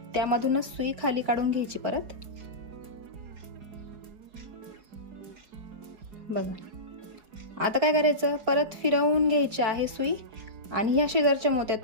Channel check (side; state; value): left; late; 4.6 ms